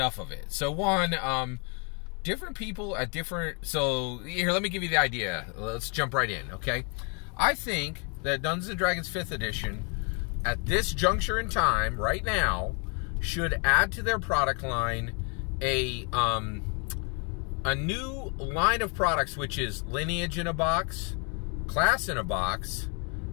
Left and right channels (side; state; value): right; quieter; 36.5 dB